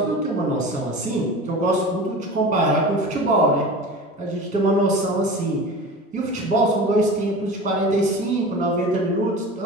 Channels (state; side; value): normal; both; correlation 0.35